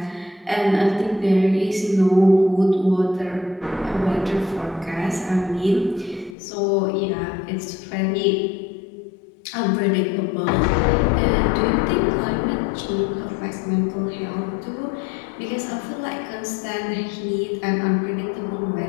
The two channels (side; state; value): right; drops out; at 6.4 s